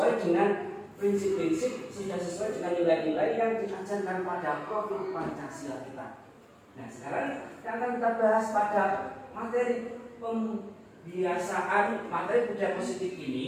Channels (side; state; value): both; identical; correlation 1.00